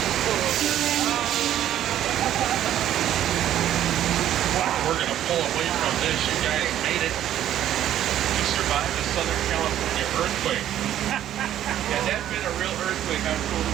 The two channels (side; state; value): left; quieter; 11.6 dB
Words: Wow, we're gonna pull away from this. You guys made it. You survived the Southern California earthquake. Yeah, that's been a real earthquake. I'm told it